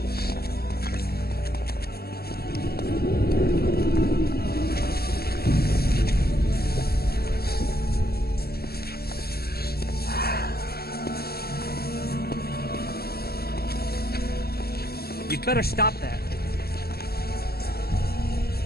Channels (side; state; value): right; late; 0.45 ms